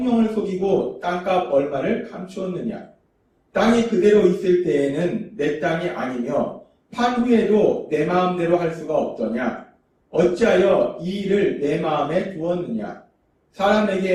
속이고 땅값 얼마를 감추었느냐. 땅이 그대로 있을 때에는 내 땅이 아니며 판 후에도 내 마음대로 할 수가 없더냐. 어찌하여 이 일을 내 마음에 두었느냐.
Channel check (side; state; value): both; identical; correlation 1.00